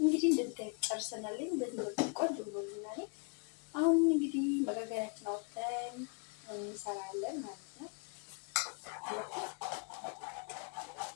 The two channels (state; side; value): quieter; right; 35.9 dB